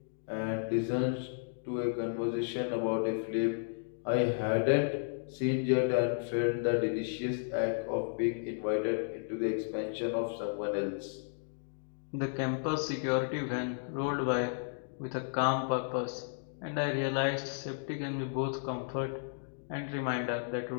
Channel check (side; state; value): right; silent; digital silence